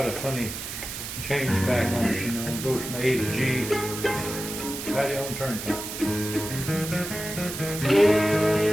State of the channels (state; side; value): noise; right; hiss, 7 dB below the sound